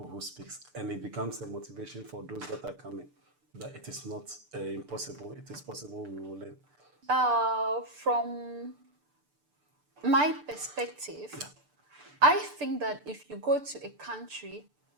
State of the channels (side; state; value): left; late; 6.8 ms